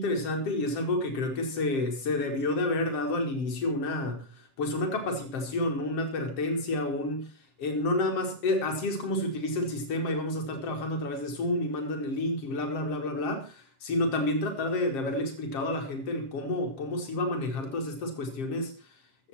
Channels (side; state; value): right; late; 7.5 ms